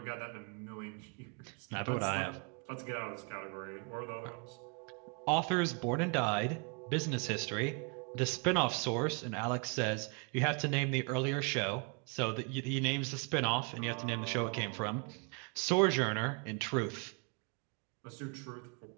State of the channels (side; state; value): left; quieter; 36.0 dB